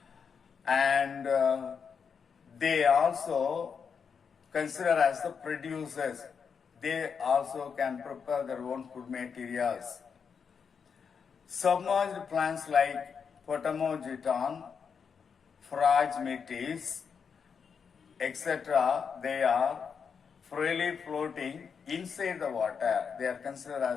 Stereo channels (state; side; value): quieter; right; 6.3 dB